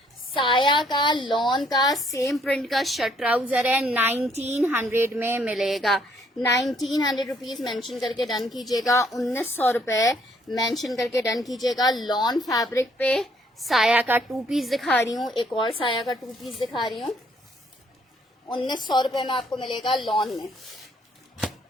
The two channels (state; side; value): normal; both; correlation 0.67